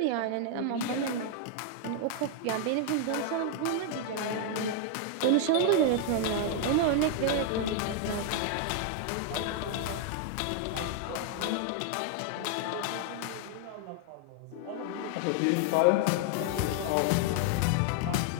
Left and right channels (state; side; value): different; both; correlation 0.00